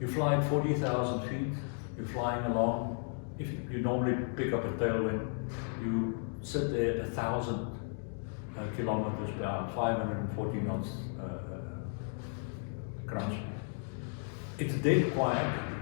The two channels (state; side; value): silent; right; 55 dB below the other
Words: you fly at 40,000 feet. You're flying along. If you normally pick up a tailwind, you sit there at 1,000 kilometers per hour, 540 knots crunch. It's dead quiet.